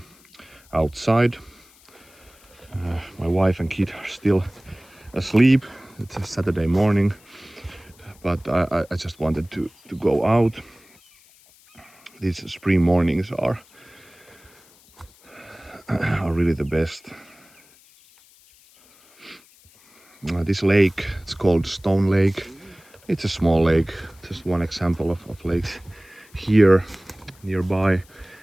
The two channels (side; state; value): left; noise; hiss, 28 dB below the sound